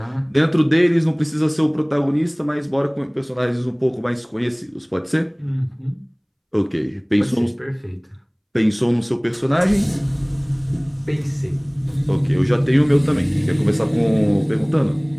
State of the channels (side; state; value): both; identical; correlation 1.00